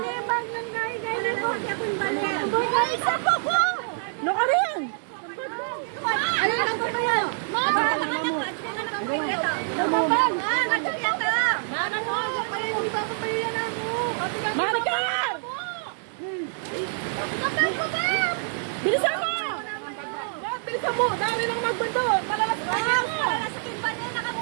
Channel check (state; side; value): silent; left; digital silence